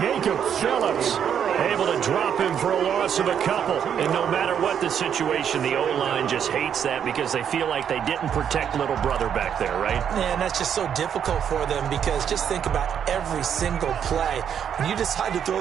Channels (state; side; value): quieter; left; 8.5 dB